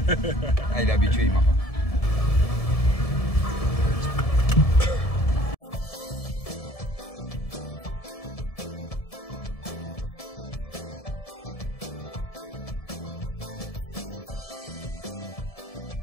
Ah, il est habitué, il m'a pas.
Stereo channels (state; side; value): late; right; 1.7 ms